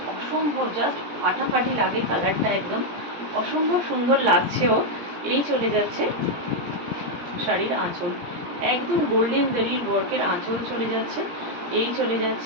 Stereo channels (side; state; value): left; late; 17 ms